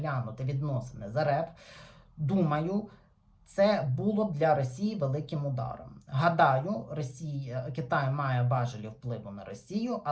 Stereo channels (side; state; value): both; identical; correlation 1.00